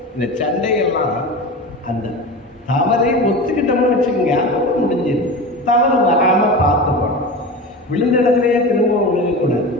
இந்த சண்டையெல்லாம் அந்த தவறை ஒத்துக்கிட்டோம்னு வச்சுக்கோங்க, அதோட முடிஞ்சிடும். தவறு வராம பார்த்துக்கணும். விழுந்த இடத்துலயே திரும்ப விழுகக்கூடாது,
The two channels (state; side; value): normal; both; correlation 0.28